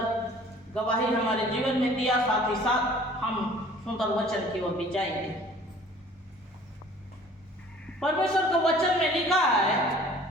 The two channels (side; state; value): both; normal; correlation 0.50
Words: गवाही हमारे जीवन में दिया, साथ ही साथ हम सुंदर वचन की ओर भी जाएंगे। परमेश्वर के वचन में लिखा है,